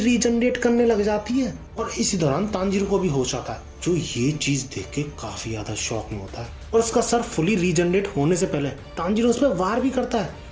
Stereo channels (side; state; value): both; identical; correlation 1.00